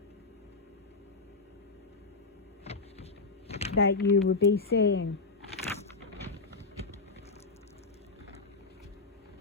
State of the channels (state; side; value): quieter; right; 3.9 dB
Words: you would be seeing.